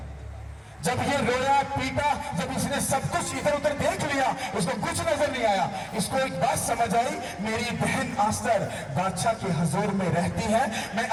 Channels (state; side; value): identical; both; correlation 1.00